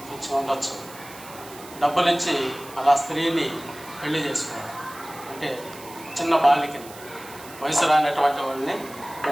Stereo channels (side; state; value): right; noise; hiss, 18 dB below the sound